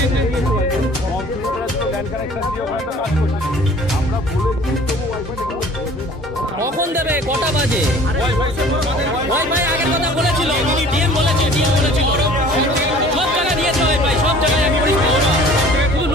কখন দেবে, কটা বাজে? ওয়াইফাই আগের কথা বলেছিল, ডিএম বলেছিল সব জায়গায় দিয়েছে ওয়াইফাই, সব জায়গায় এক পরিষেবা। শুধু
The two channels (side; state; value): both; normal; correlation 0.49